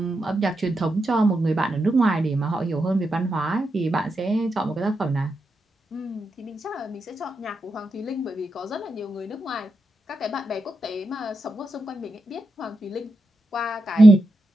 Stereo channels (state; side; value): normal; both; correlation 0.86